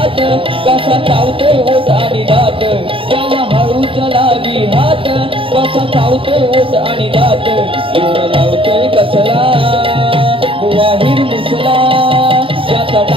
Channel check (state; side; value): late; left; 0.26 ms